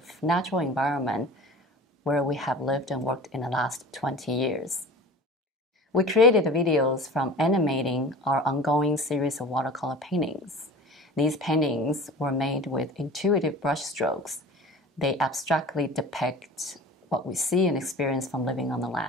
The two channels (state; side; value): normal; both; correlation 0.39